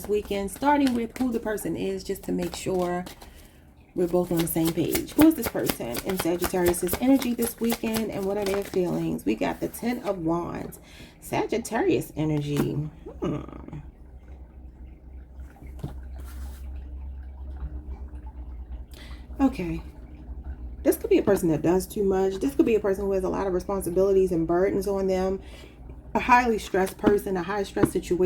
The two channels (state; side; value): identical; both; correlation 1.00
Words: weekend, starting with who the person is, just to make sure we're both on the same page. Who is this person in Sagittarius's energy this weekend, and what are their feelings? We got the 10 of Wands. Sagittarius energy. Okay. This could be a person that does too much. This could be a person who has a lot of responsibilities and burdens on them. A highly stressed person, a high stress